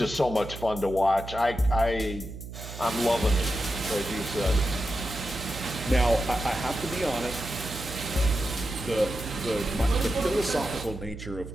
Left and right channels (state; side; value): noise; right; hum, 11 dB below the sound